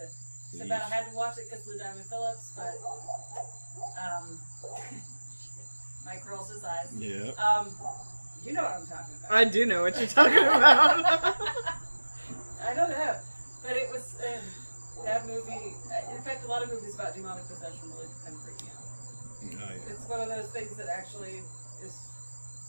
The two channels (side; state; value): both; inverted; correlation -1.00